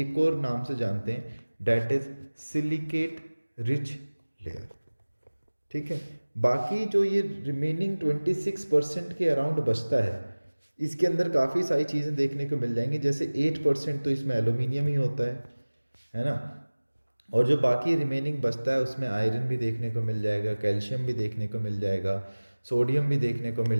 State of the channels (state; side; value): inverted; both; correlation -1.00